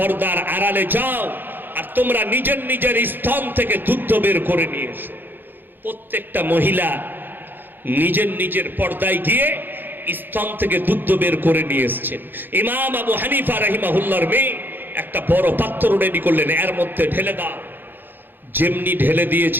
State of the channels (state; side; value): late; left; 0.094 ms